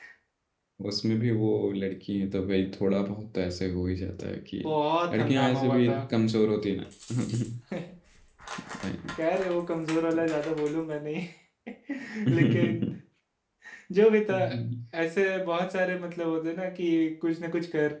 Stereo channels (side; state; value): both; identical; correlation 1.00